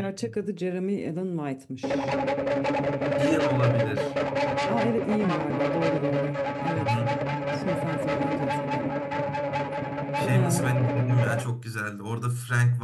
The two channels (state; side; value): identical; both; correlation 1.00